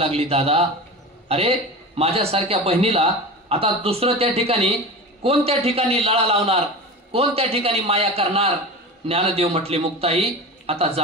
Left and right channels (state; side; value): normal; both; correlation 0.30